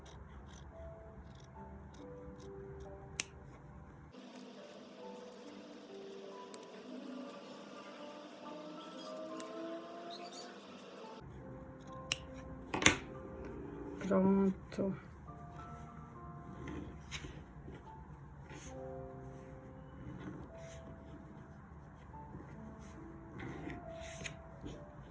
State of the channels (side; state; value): both; identical; correlation 1.00